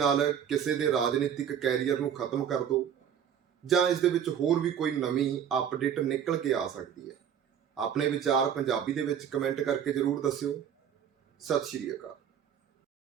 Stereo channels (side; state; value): left; quieter; 8.8 dB